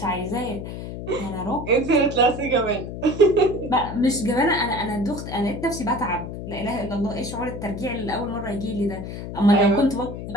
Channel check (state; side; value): noise; left; hum, 8 dB below the sound